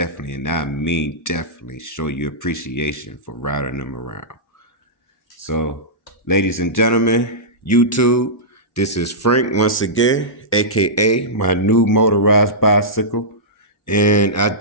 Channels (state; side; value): normal; both; correlation -0.14